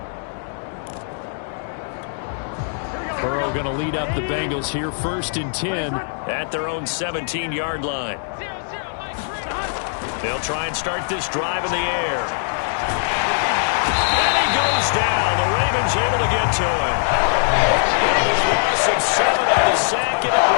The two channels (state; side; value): silent; right; digital silence